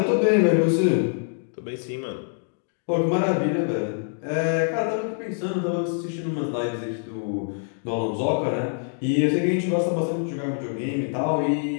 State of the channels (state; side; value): silent; right; 62 dB below the other